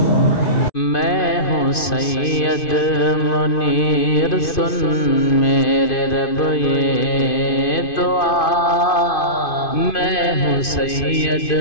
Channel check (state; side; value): late; right; 2.5 ms